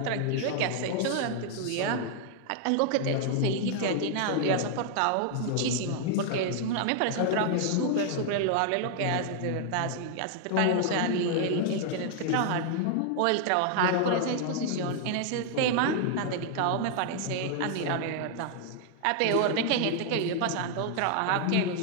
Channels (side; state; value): both; different; correlation 0.00